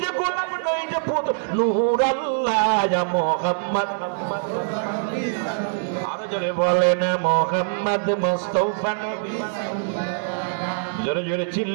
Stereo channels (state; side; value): silent; left; digital silence